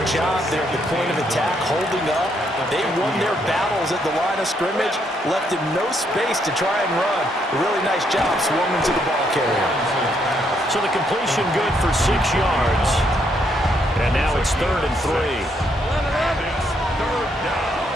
job there at the point of attack, holding up. They won their battles at the line of scrimmage, left him no space to try and run. Really nice job swarming to the ball carrier. So the completion good for 6 yards. And now it's 3rd and 3.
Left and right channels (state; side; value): normal; both; correlation 0.74